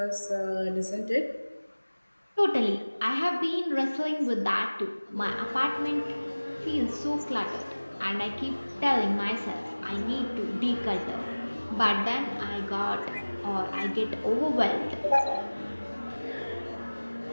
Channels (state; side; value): inverted; both; correlation -1.00